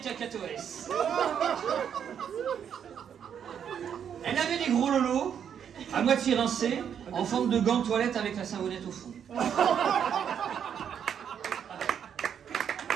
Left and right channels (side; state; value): left; quieter; 8.3 dB